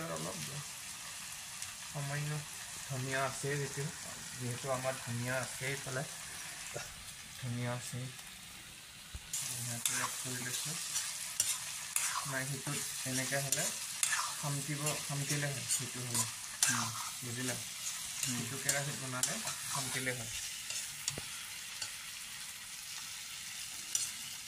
অলপ সামান্য, ধনিয়া আছে যিহেতু আমাৰ ধনিয়া আছে, এইফালে ধনিয়া আছে, ধনিয়াটো এড কৰি লৈছোঁ। নাই সেইটোত এনেকৈ হ'লে খামকিলে হয়, সেইটো হ'লে বুজিলা, সেইটো কেৰাহীত বনালে খামকিলে হয়।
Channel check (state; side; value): identical; both; correlation 1.00